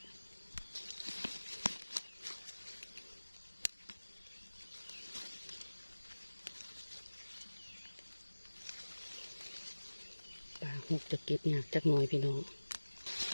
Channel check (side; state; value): both; inverted; correlation -1.00